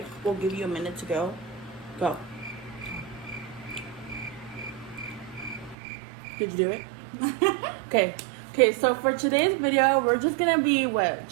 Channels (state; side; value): drops out; left; at 5.8 s